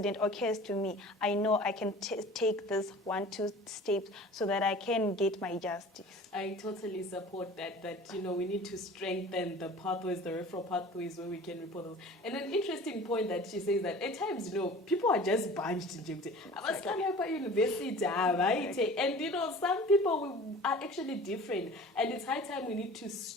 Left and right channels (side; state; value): both; normal; correlation 0.42